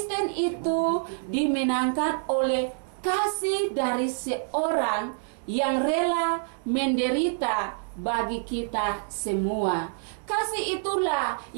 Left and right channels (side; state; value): left; silent; digital silence